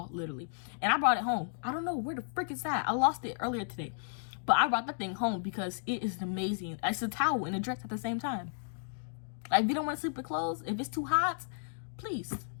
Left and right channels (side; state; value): right; silent; digital silence